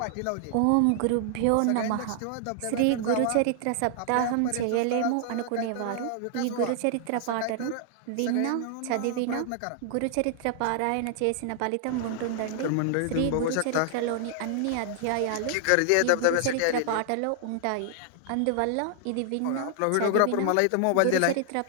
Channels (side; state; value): both; different; correlation 0.00